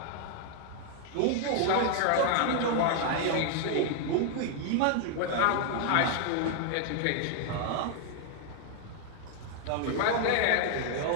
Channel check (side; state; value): both; different; correlation 0.00